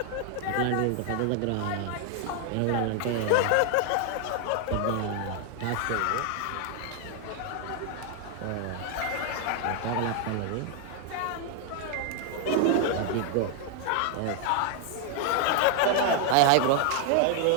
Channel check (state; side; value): different; both; correlation 0.00